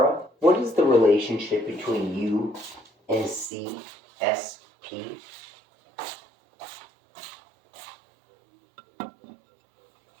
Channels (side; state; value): left; drops out; at 3.5 s